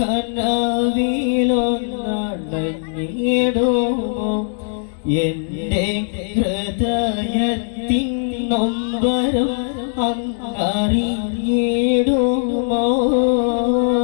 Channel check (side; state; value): right; silent; digital silence